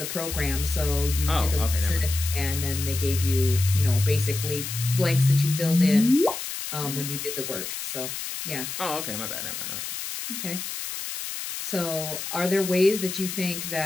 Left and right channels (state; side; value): noise; left; hiss, 6 dB below the sound